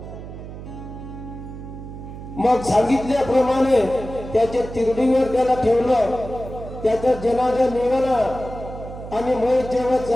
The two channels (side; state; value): right; noise; hum, 12 dB below the sound